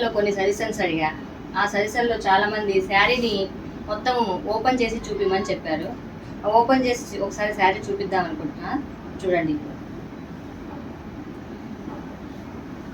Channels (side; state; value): both; identical; correlation 1.00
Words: కొన్ని సజెషన్స్ అడిగా. ఆ సజెషన్లో చాలామంది శారీని మొత్తం ఓపెన్ చేసి చూపిమని చెప్పారు. ఓపెన్ చేసి ఒకసారి శారీ చూపిద్దాం అనుకుంటున్నా. చూడండి,